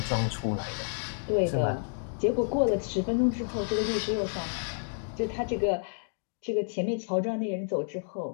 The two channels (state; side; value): silent; right; digital silence